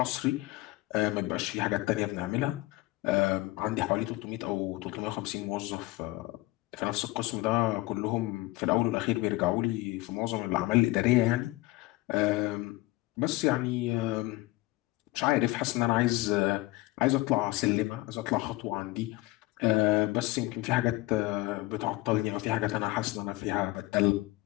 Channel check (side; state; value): right; quieter; 20.0 dB